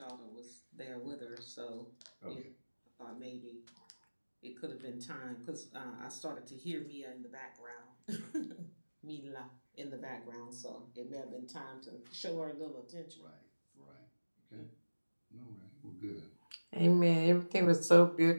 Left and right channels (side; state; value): both; inverted; correlation -1.00